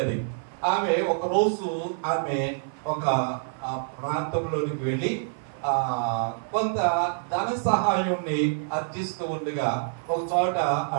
ఆమె ఒక రోజు ఆమె ఒక ప్రాంతంలోనికి వెళ్ళి కొంత ధన సహాయాన్ని అర్జిస్తూ ఉండగా ఒక చోట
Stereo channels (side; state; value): left; silent; 56 dB below the other